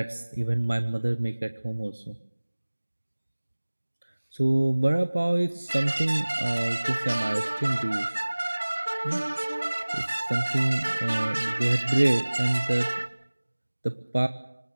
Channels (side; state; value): both; inverted; correlation -1.00